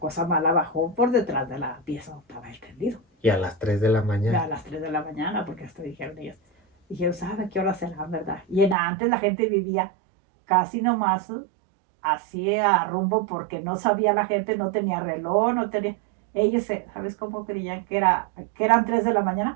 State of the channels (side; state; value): left; drops out; at 8.8 s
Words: mala bajó por detrás de la pieza donde estaba él tendido. Y a las 3 de la mañana. A las 3 de la mañana, porque hasta dijeron ellos, ¿sabe qué hora será, verdad? Y antes la gente vivía casi nomás así a rumbo porque no sabía la gente, no tenía reloj, no tenía... Ellos, ¿sabes cómo creían que eran 3 de la mañana?